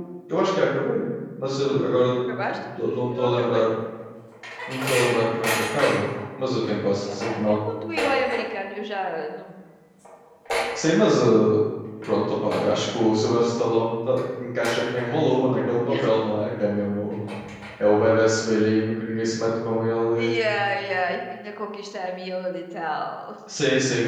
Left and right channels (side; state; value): both; identical; correlation 1.00